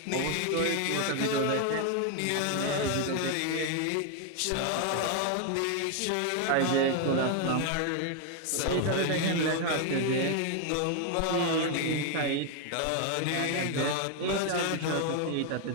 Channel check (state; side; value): different; both; correlation 0.01